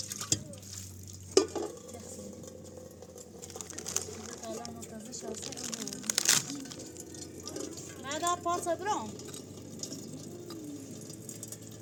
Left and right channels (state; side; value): identical; both; correlation 1.00